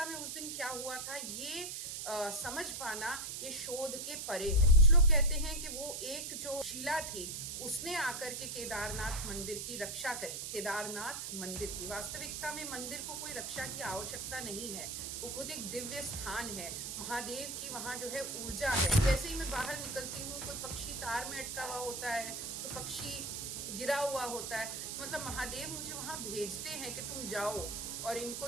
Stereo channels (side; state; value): right; noise; hiss, 5 dB below the sound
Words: में उस दिन क्या हुआ था ये समझ पाना ये शोध के परे है। कुछ लोग कहते हैं कि वो एक जो शिला थी उसने आकर के केदारनाथ मंदिर की रक्षा करी। केदारनाथ मंदिर की वास्तविकता में मंदिर को कोई रक्षा की आवश्यकता नहीं है, वो खुद एक दिव्य स्थान है। महादेव की वहाँ जो है ऊर्जा है। जैसे ही मैं बाहर निकलती हूँ, कोई पक्षी तार में अटका हुआ होता है, तो पक्षी गिरा हुआ होता है, मतलब महादेव मुझे वहाँ भेजते हैं कि तुम जाओ और इनको